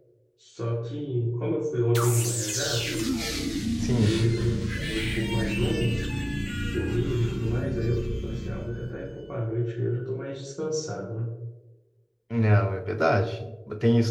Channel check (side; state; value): both; identical; correlation 1.00